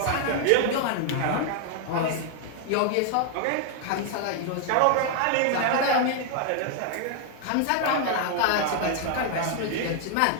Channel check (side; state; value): both; different; correlation 0.00